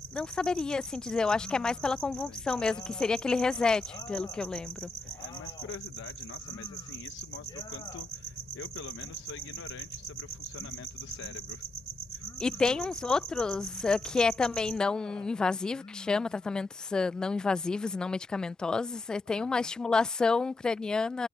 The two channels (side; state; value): right; quieter; 3.3 dB